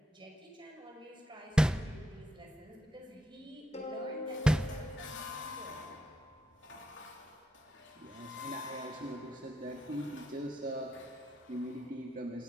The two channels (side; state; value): both; normal; correlation 0.81